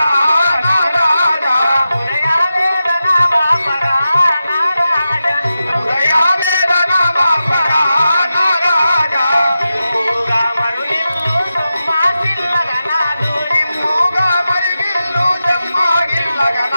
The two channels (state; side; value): inverted; both; correlation -0.92